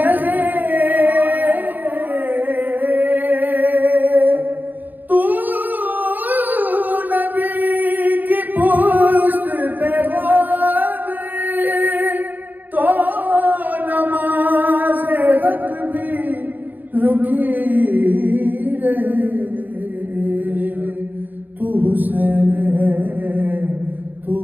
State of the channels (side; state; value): left; late; 0.087 ms